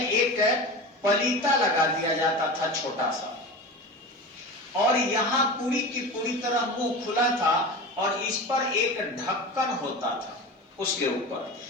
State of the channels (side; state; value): both; normal; correlation 0.30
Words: एक पलीता लगा दिया जाता था छोटा सा, और यहां पूरी की पूरी तरह मुंह खुला था, और इस पर एक ढक्कन होता था उसके ऊपर।